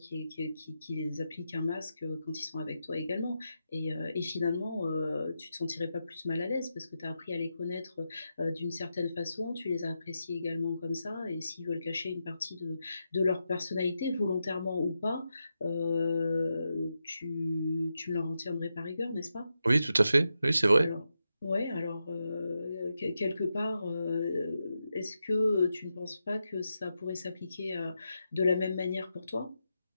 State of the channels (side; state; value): both; inverted; correlation -0.87